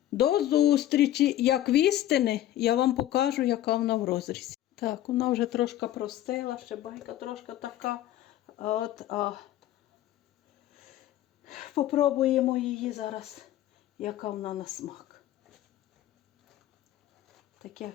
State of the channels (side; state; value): right; quieter; 13.1 dB